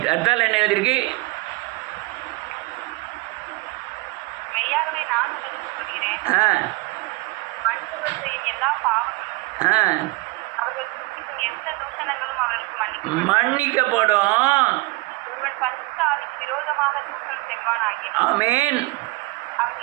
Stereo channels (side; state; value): left; quieter; 24.4 dB